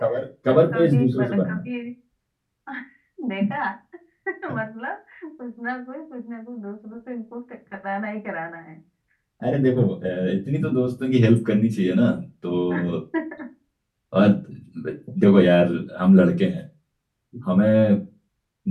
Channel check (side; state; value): both; identical; correlation 1.00